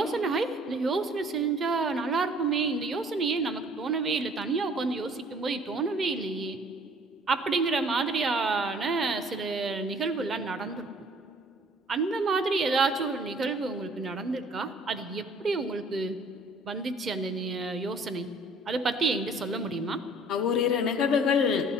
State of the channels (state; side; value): normal; both; correlation 0.54